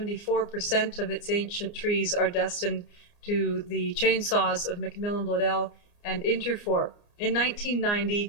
of its ancient trees are destined to the chainsaws of Macmillan Bloedel and Interfor. In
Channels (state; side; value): late; right; 29 ms